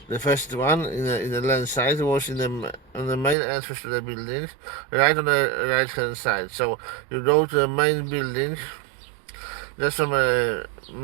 the first one in the landside was on the main entrance to the building, right on the right hand side. So you go to the main building, just from a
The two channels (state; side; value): drops out; left; at 3.4 s